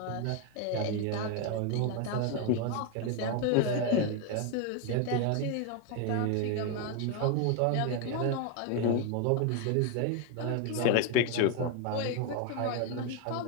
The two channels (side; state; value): both; different; correlation 0.01